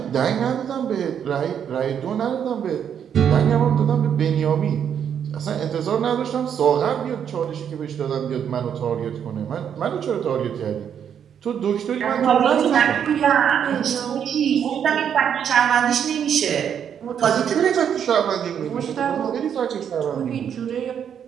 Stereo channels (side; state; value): left; quieter; 8.4 dB